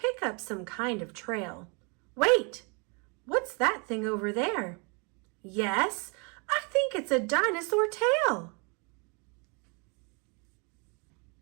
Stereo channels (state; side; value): quieter; left; 33.2 dB